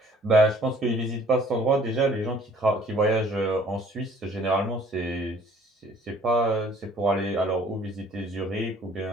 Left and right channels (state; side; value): normal; both; correlation 0.56